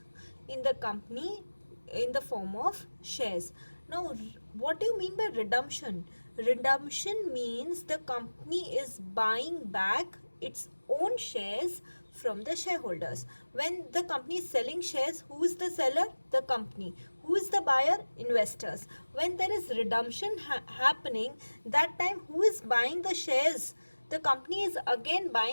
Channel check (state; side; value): inverted; both; correlation -1.00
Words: in the company in the form of shares. Now, what do you mean by redemption? Redemption means the company is buying back its own shares from the shareholders. When the company is selling shares, who is the seller? The company. Who is the buyer? Investors. When there is redemption happening, that time who is buying the shares? The company is again